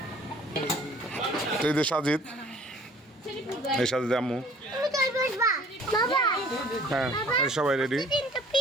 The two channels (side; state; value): both; normal; correlation 0.53